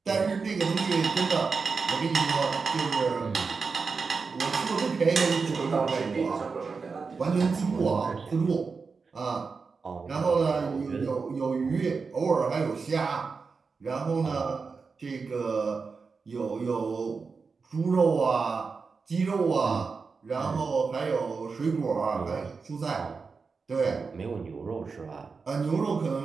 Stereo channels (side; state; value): left; quieter; 4.8 dB